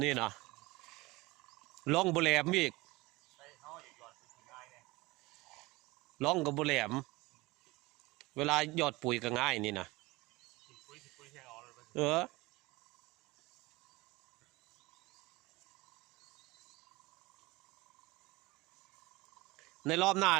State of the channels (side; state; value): left; quieter; 21.8 dB